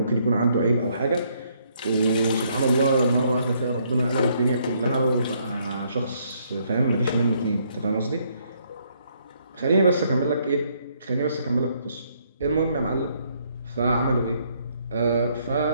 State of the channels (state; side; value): inverted; both; correlation -0.70